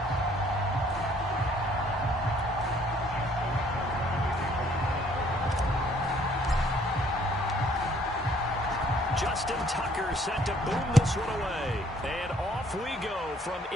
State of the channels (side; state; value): both; normal; correlation 0.62